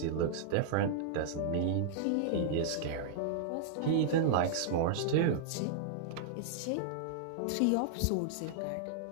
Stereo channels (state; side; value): different; both; correlation -0.01